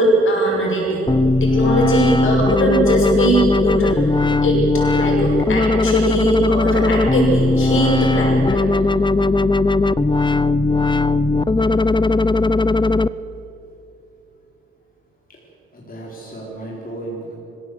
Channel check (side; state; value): both; normal; correlation 0.71